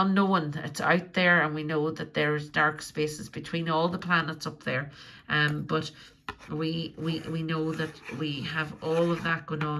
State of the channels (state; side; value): identical; both; correlation 1.00